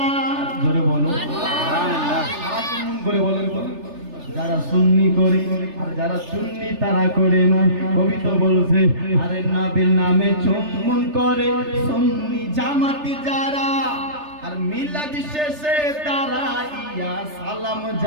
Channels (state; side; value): late; left; 3.3 ms